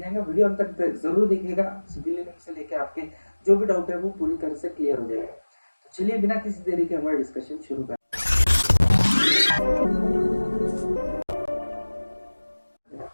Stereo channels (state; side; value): inverted; both; correlation -1.00